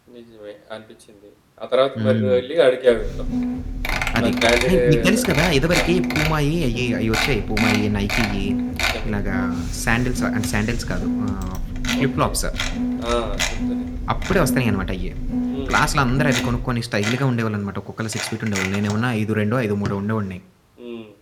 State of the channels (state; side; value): identical; both; correlation 1.00